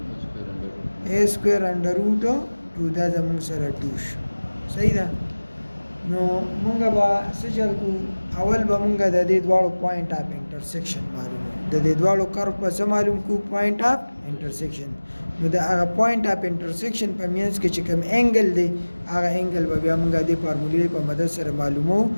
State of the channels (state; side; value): inverted; both; correlation -1.00